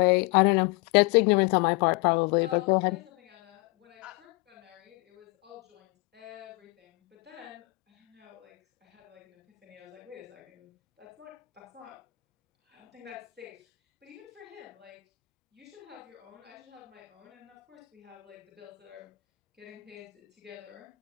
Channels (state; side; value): quieter; right; 26.0 dB